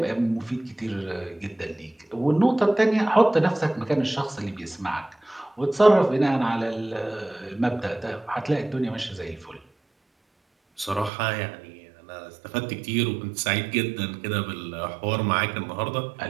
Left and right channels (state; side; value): drops out; left; at 11.1 s